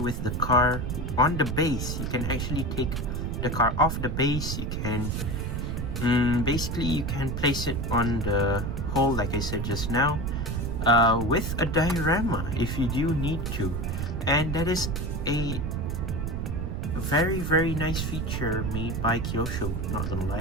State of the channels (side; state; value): right; noise; rumble, 2 dB below the sound